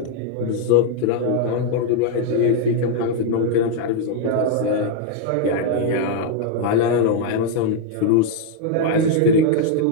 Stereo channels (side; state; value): both; different; correlation 0.00